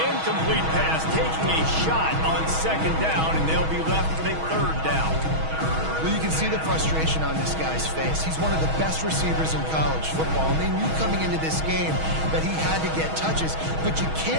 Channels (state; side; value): late; left; 6.3 ms